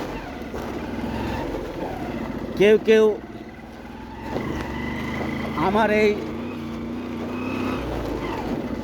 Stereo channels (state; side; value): identical; both; correlation 1.00